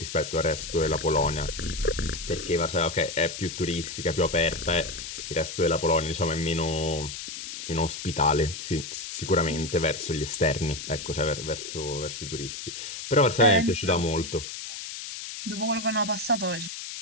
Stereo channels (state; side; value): noise; left; hiss, 8 dB below the sound